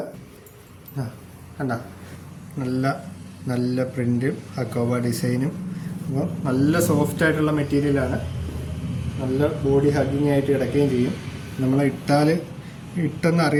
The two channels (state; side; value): identical; both; correlation 1.00